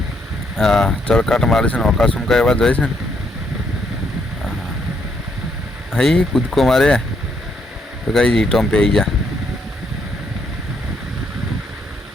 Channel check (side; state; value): both; normal; correlation 0.74